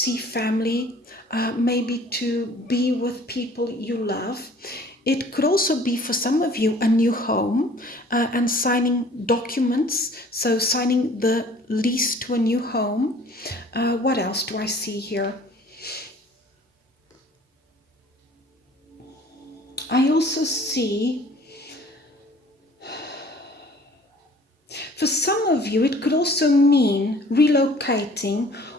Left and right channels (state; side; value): normal; both; correlation 0.52